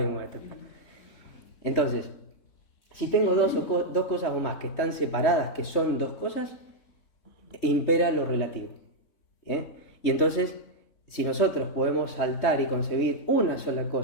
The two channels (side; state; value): right; late; 3.2 ms